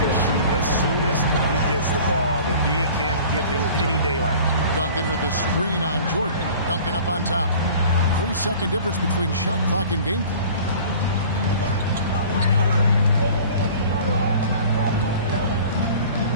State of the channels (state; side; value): inverted; both; correlation -0.45